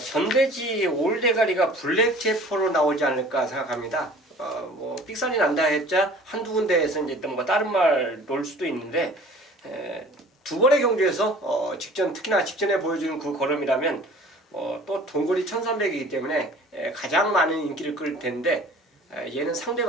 올대가리가 블랙 제퍼로 나오지 않을까 생각합니다. 뭐 삑살이 난다 했자 한두 군데에서 이제 뭐 다른 말 놓을 수도 있는데 두 번의 경주에서 특히나 직전에 보여주는 그 걸음이라면 또 동거리 1300이기 때문에 가장 많은 인기를 끌 텐데 얘는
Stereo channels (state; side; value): normal; both; correlation 0.47